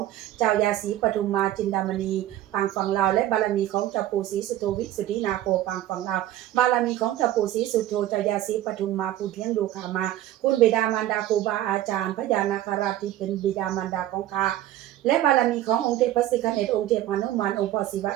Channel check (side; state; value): left; quieter; 13.4 dB